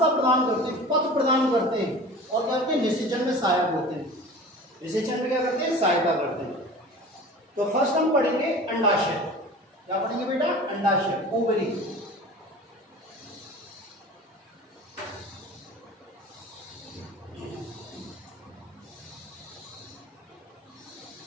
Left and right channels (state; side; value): normal; both; correlation 0.39